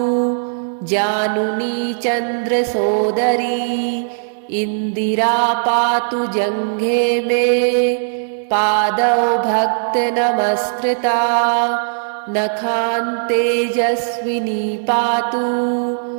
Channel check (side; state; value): left; silent; digital silence